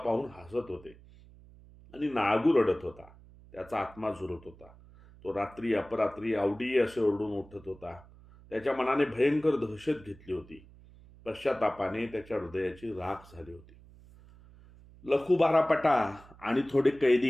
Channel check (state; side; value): noise; right; hum, 23 dB below the sound